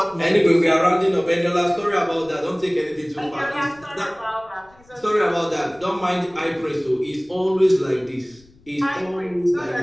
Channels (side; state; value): left; noise; rumble, 29 dB below the sound